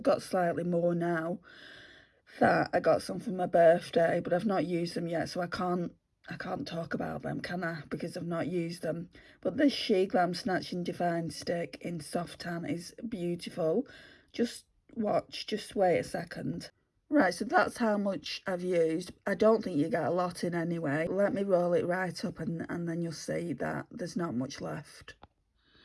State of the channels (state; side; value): identical; both; correlation 1.00